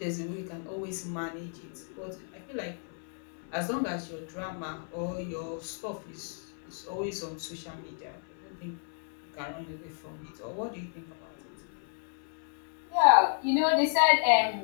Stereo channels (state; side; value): silent; right; 56 dB below the other